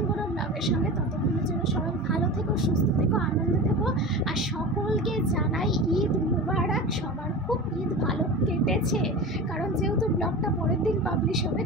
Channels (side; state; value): both; normal; correlation 0.30